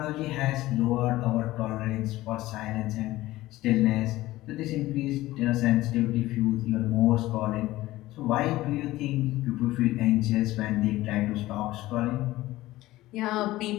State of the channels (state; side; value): quieter; right; 17.1 dB